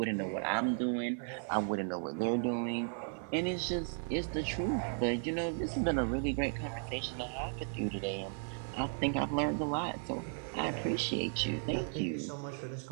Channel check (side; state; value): left; silent; 54 dB below the other